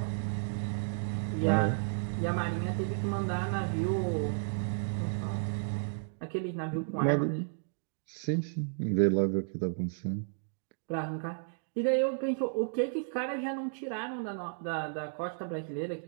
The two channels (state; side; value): silent; left; digital silence